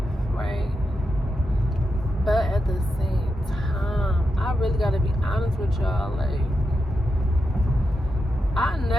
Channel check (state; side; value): normal; both; correlation 0.87